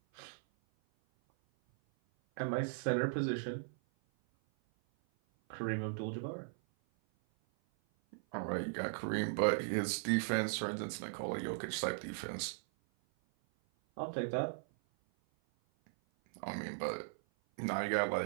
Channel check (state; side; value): silent; left; 52 dB below the other